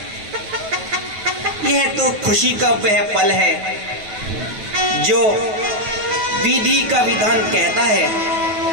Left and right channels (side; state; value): left; late; 9.2 ms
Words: यह तो खुशी का वह पल है जो विधि का विधान कहता है।